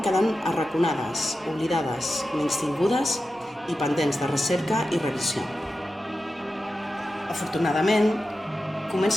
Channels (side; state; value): both; normal; correlation 0.92